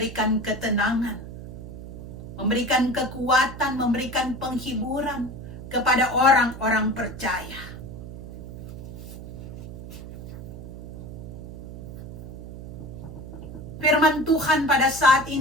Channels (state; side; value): noise; right; hum, 11 dB below the sound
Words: ketenangan, memberikan kekuatan, memberikan penghiburan kepada orang-orang percaya. Firman Tuhan pada saat